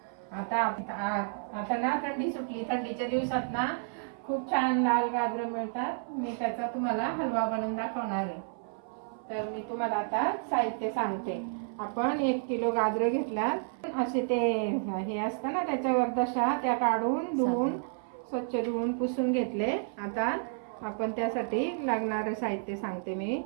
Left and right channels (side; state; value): left; silent; 57 dB below the other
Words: आता ना थंडी सुटली, थंडीच्या दिवसात ना खूप छान लाल गाजर मिळतात। मी त्याचा तुम्हाला हलवा बनवून दाखवणार आहे। तर मी तुम्हाला आता साहित्य सांगते। आपण 1 किलो गाजर घेतल्यात, असे ते हे असतं ना त्याच्यावर दशा, त्या काढून धुवून स्वच्छ धुवून पुसून घेतले। आता आपण त्यासाठी लागणारे साहित्य सांगते मी।